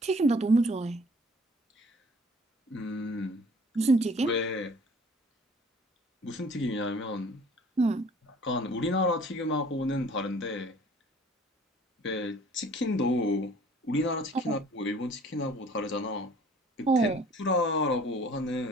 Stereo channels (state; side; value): normal; both; correlation 0.52